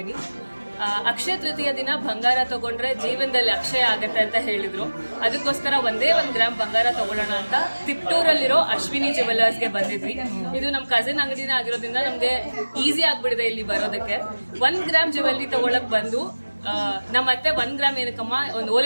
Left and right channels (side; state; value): both; inverted; correlation -1.00